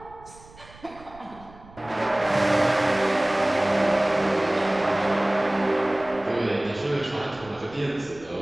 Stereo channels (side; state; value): right; noise; rumble, 23 dB below the sound